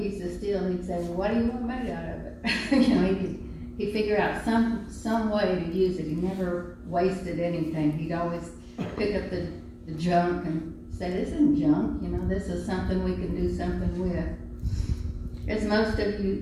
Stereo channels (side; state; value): both; identical; correlation 1.00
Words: of steel, he'd say, well, what do you want made out of it? He'd figure out some way to use it. He never wasted anything. He'd always pick up the junk and say, this isn't junk, this is something we can do something with. As most of